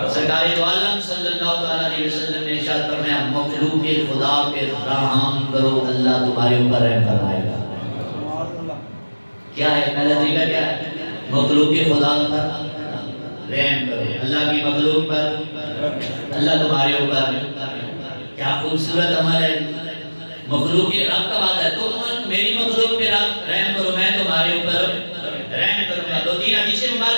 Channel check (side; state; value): both; inverted; correlation -1.00